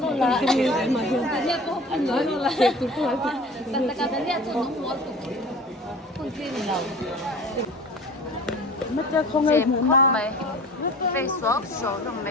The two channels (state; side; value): normal; both; correlation 0.41